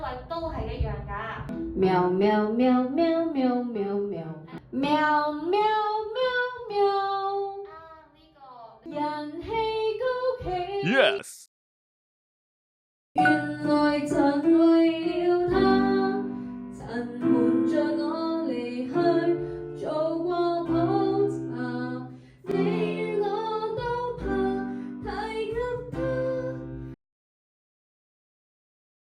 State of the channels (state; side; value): identical; both; correlation 1.00